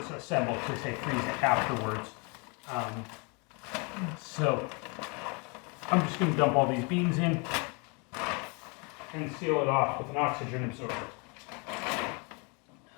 assembled, so they say freeze it afterwards. So I'm just going to dump all these beans in and seal it off with an oxygen absorber.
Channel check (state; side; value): quieter; right; 32.2 dB